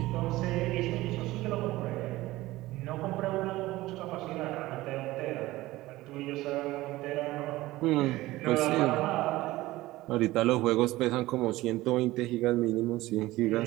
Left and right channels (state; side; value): quieter; left; 18.0 dB